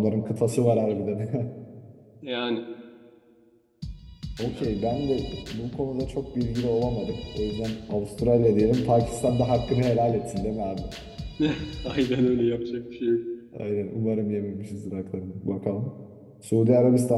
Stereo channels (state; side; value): identical; both; correlation 1.00